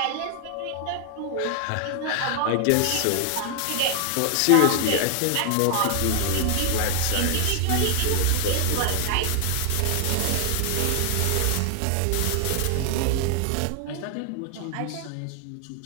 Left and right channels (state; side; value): different; both; correlation 0.00